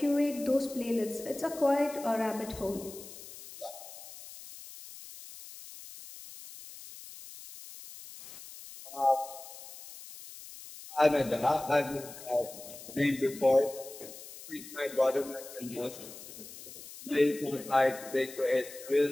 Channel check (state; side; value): noise; left; hiss, 15 dB below the sound